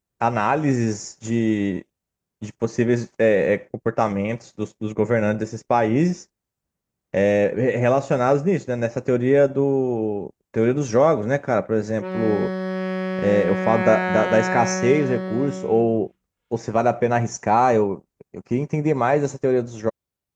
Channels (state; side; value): identical; both; correlation 1.00